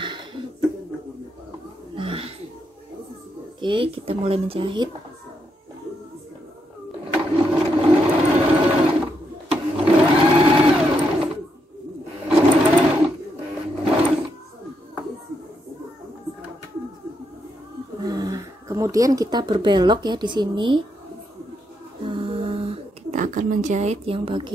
oke, kita mulai menjahit. Nah, kemudian kita berbelok ya di sini. akan menjahit yang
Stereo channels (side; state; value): both; normal; correlation 0.79